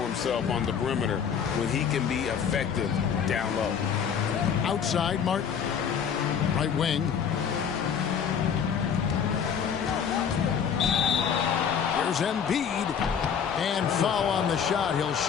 himself on the perimeter when he can be effective down low. Outside, Martin. Right wing. Here's Embiid. And foul on the shot. He'll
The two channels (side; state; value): right; quieter; 7.4 dB